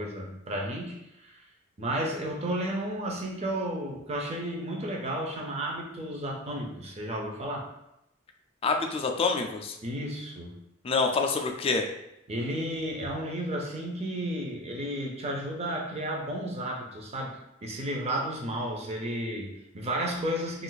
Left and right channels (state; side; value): normal; both; correlation 0.26